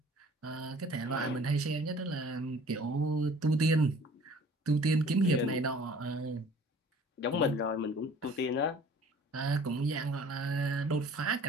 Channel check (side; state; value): both; normal; correlation 0.50